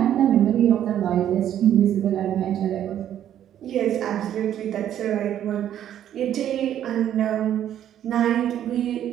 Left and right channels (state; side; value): quieter; left; 10.8 dB